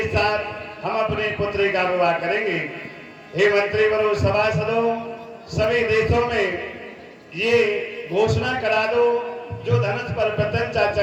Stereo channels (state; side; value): identical; both; correlation 1.00